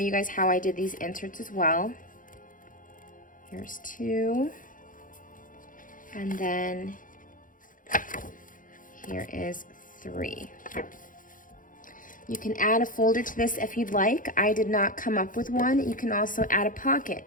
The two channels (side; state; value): right; late; 0.39 ms